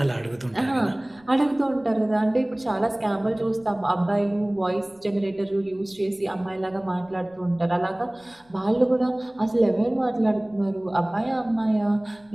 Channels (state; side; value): noise; left; rumble, 30 dB below the sound